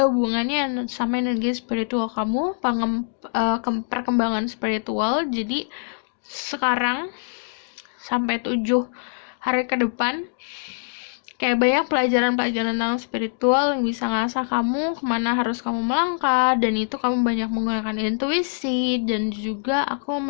hubungannya sama energi spiritual kamu, perkembangan spiritual. Jadi sekarang sampai 7 hari ke depan Kayak banyak pelajaran-pelajaran tentang spiritual yang bisa ngasah kamu kemana harus kamu melangkah, dan itu kamu banyak menggunakan intuisi. Dan juga aku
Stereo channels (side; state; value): right; silent; digital silence